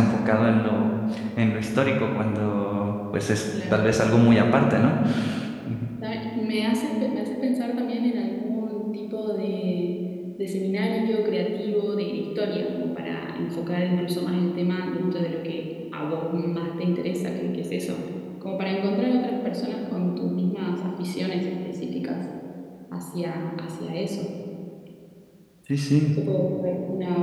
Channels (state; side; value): identical; both; correlation 1.00